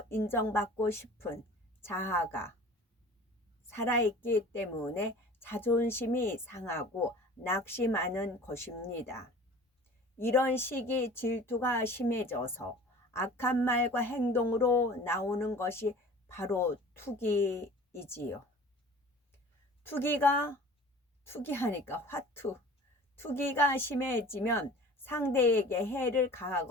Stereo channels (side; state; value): both; normal; correlation 0.43